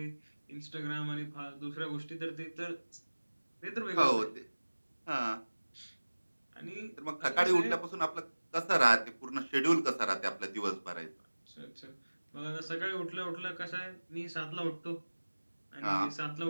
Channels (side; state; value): both; inverted; correlation -1.00